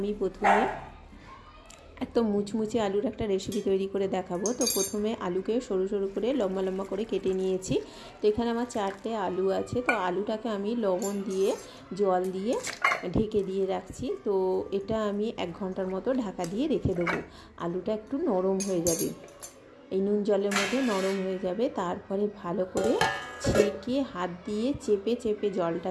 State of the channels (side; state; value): both; identical; correlation 1.00